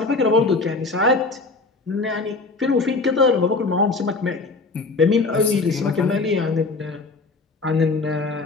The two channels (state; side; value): quieter; right; 3.8 dB